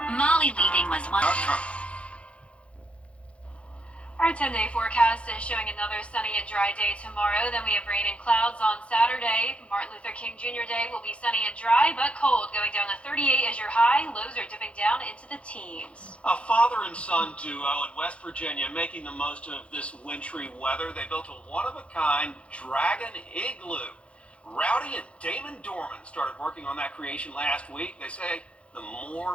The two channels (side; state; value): right; late; 0.061 ms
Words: Molly leaving was one. Our 10-day forecast is showing another sunny and dry day tomorrow. Then we have rain and clouds on Saturday. Martin Luther King Jr. Day will be sunny and dry, but cold, going down to 38 as your high. Lows are dipping down into the teens. A father and son duo in West Virginia making the most of this wintry weather. They built a one-of-a-kind dragon igloo. Rowdy and Damon Dorman started working on that creation last week. They say the